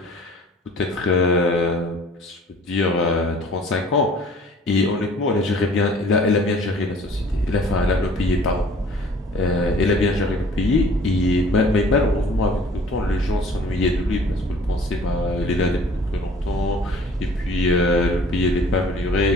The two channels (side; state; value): both; normal; correlation 0.51